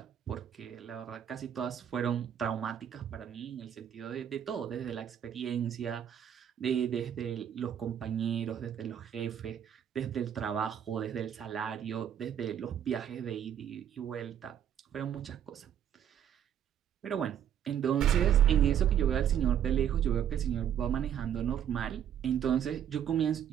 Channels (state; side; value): quieter; left; 9.5 dB